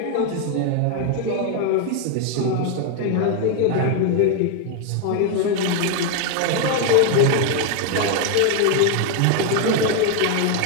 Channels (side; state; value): both; different; correlation 0.01